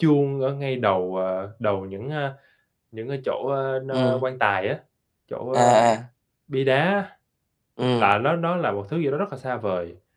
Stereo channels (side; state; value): both; identical; correlation 1.00